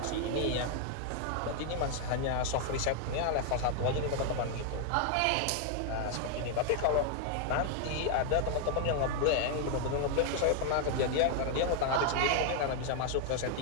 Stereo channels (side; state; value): both; different; correlation 0.00